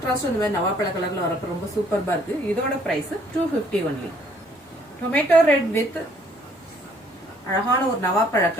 இந்த மாதிரி நவாப்பழ கலர்ல வரப்ப ரொம்ப சூப்பர்பா இருக்கு. இதோட price 250 only. Tomato red with அழகான ஒரு நவாப்பழ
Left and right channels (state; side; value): normal; both; correlation 0.63